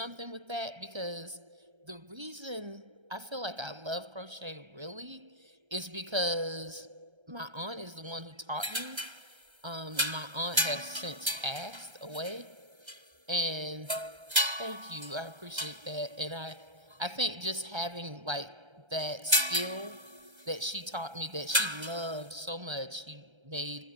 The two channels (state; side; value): late; left; 1.3 ms